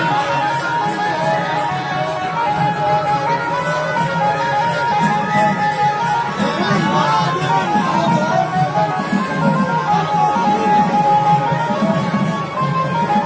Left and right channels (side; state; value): both; identical; correlation 1.00